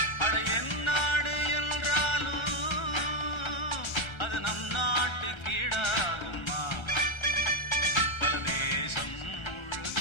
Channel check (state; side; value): late; right; 1.4 ms